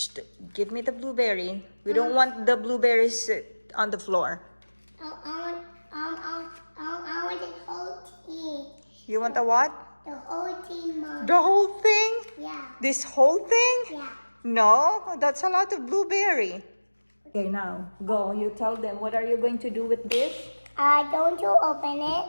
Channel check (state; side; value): inverted; both; correlation -1.00